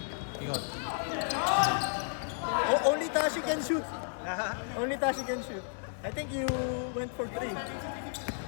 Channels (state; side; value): silent; right; digital silence